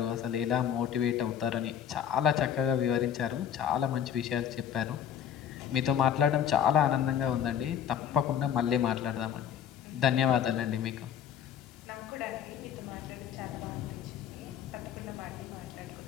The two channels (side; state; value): right; quieter; 9.1 dB